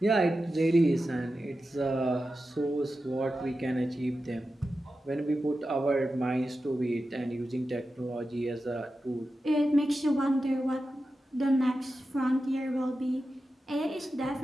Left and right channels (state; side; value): normal; both; correlation 0.92